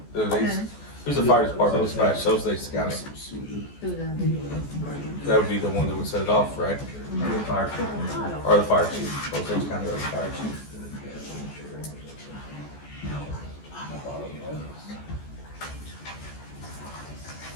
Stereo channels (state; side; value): late; right; 14 ms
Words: who's the fire department dispatch, Osage County. That would be the one that would set it off, right? The fire chief. Or the fire chief, Osage County or the fire chief.